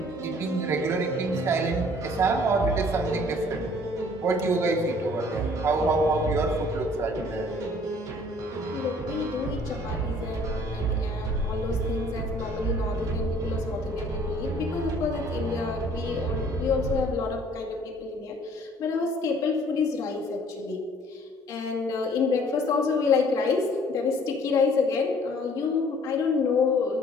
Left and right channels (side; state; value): both; normal; correlation 0.56